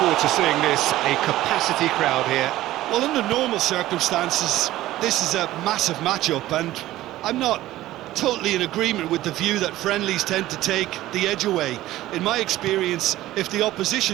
to seeing this, a capacity crowd here. Well, under normal circumstances, this is a massive matchup, and I'm not totally in agreement with the view that friendlies tend to take the edge away. In my experience, if the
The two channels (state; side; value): quieter; left; 15.5 dB